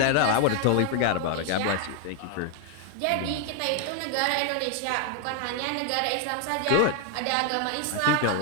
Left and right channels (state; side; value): different; both; correlation 0.01